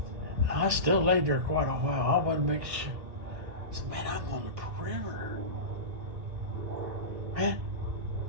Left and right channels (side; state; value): left; late; 1.8 ms